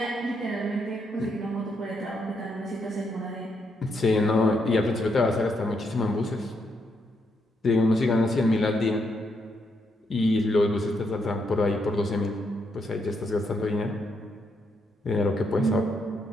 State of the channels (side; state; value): both; normal; correlation 0.78